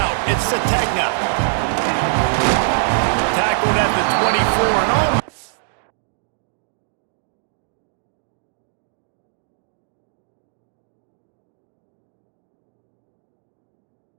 It's Sategna. Tackled at the 24 and all.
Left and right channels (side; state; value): left; silent; digital silence